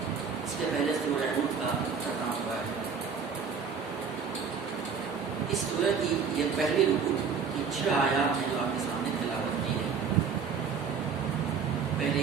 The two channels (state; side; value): quieter; left; 6.1 dB